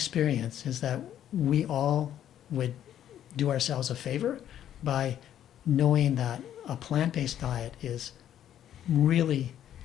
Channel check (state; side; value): quieter; right; 10.8 dB